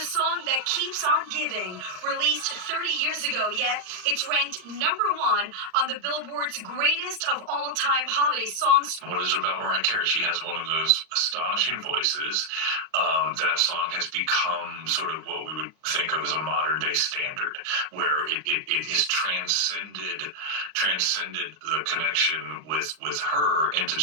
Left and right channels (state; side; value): late; left; 38 ms